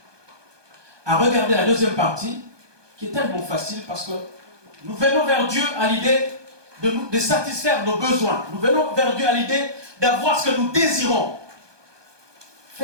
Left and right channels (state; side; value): late; left; 1.2 ms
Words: à regarder la deuxième partie, qui est tellement facile parce que nous venons vers Dieu à l'idée de satisfaire nos besoins. Nous venons vers Dieu à l'idée d'avoir ce que nous désirons.